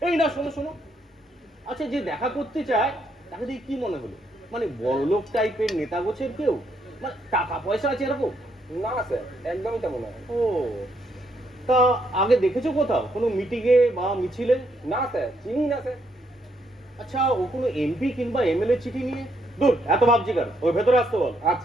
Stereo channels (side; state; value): both; normal; correlation 0.74